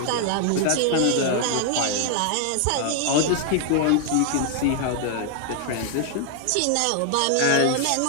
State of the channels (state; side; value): different; both; correlation 0.00